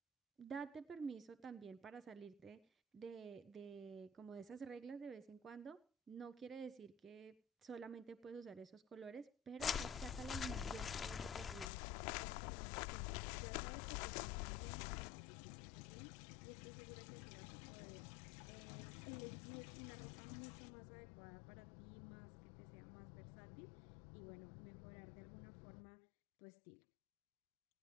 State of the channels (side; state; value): right; drops out; at 11.7 s